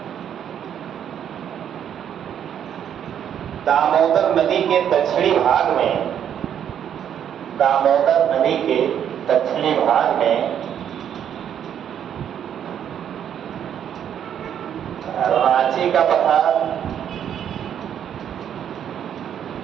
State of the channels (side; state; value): left; quieter; 9.2 dB